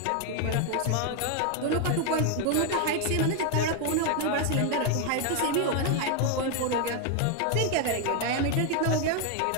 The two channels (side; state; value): both; different; correlation 0.01